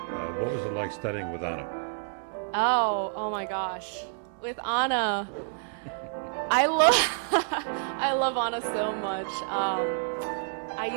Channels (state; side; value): silent; left; 59 dB below the other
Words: What was it like studying with Anna? Oh my gosh. With Anna, I love Anna so much.